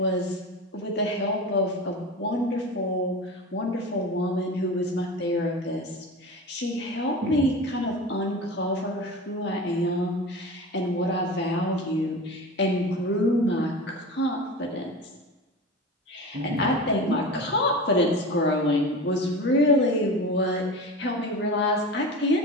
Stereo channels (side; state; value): both; normal; correlation 0.30